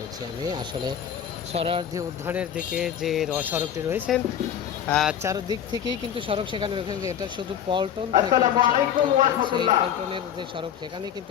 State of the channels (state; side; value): quieter; right; 9.3 dB